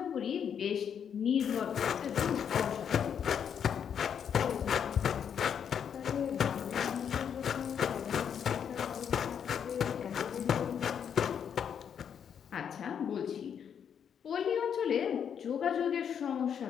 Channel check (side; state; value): right; quieter; 8.0 dB